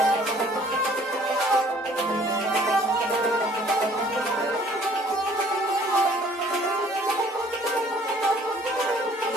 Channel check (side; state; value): both; normal; correlation 0.56